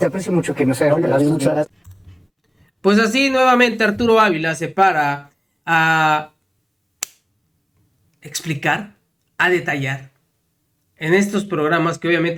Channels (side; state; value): both; identical; correlation 1.00